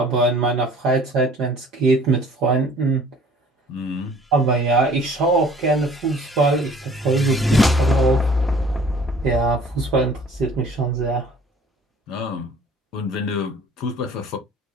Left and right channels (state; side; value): normal; both; correlation 0.51